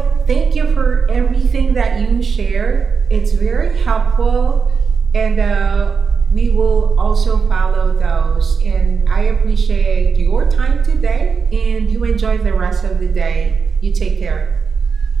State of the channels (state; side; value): quieter; left; 5.6 dB